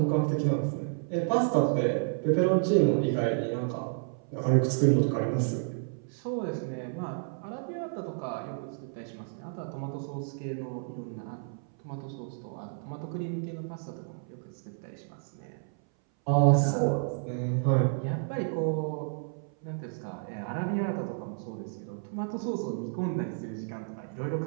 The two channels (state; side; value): silent; left; 57 dB below the other